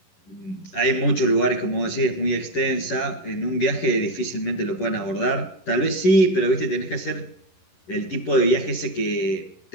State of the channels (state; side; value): late; right; 11 ms